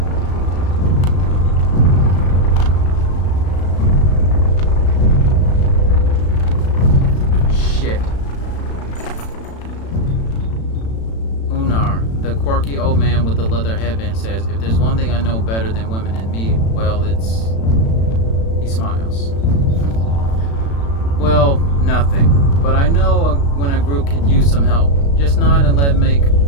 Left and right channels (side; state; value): right; late; 36 ms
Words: Shit. Unar, the quirky old man with the leather headband, says, if there's one thing I know better than women and me, well, it's... He smiles. Well, nothing. But I know when a group could use some help. Just nod and let